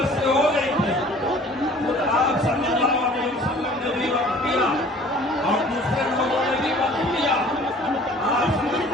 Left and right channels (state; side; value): normal; both; correlation 0.50